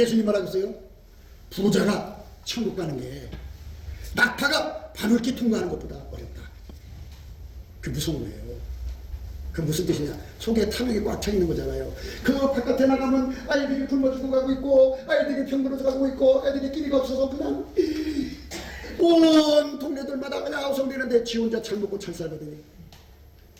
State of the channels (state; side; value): identical; both; correlation 1.00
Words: 뭐라고 했어요? 부자가 천국 가는 게 낙타가 바늘기 통과하는 것보다 어렵다. 그게 무서운 거예요. 그 무슨 뜻이냐? 속에 탐욕이 꽉 차 있는 거잖아요. 그 바깥에 나가면 아이들이 굶어 죽어 가고 있고, 아이들이 병들어 가고 있고, 애들이 끼리가 없어서 그냥 온 동네들마다 그냥 아우성되는데 지 혼자 잘 먹고 잘 살거든요.